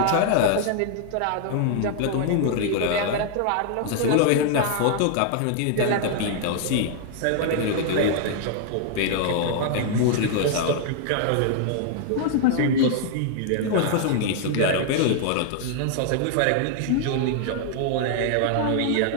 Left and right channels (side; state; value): both; different; correlation 0.00